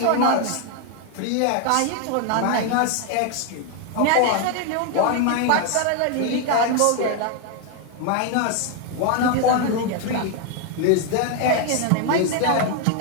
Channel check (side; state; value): both; different; correlation 0.01